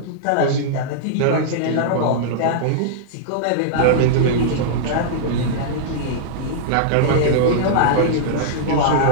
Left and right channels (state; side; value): different; both; correlation -0.02